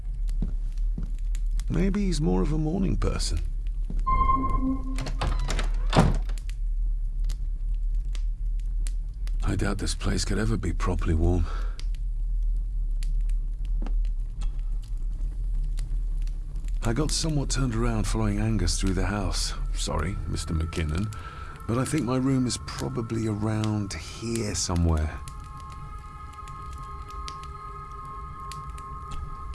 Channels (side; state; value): both; identical; correlation 1.00